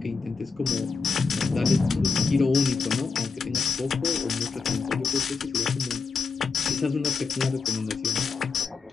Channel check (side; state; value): right; quieter; 4.9 dB